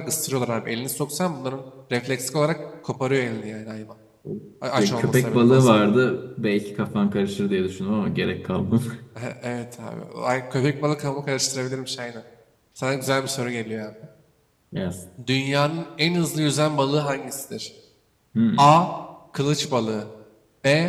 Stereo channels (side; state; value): both; identical; correlation 1.00